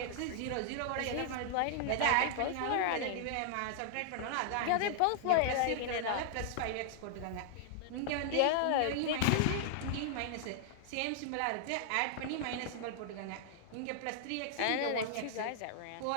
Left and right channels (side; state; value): both; different; correlation -0.01